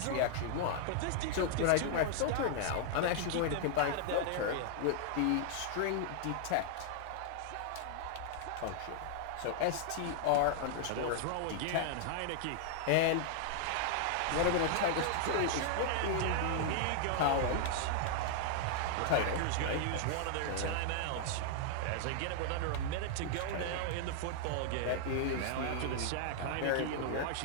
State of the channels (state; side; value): different; both; correlation -0.01